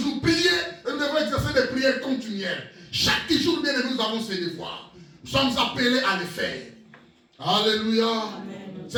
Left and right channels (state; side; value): identical; both; correlation 1.00